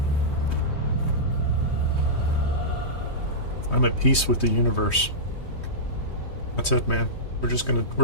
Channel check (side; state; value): right; late; 3.2 ms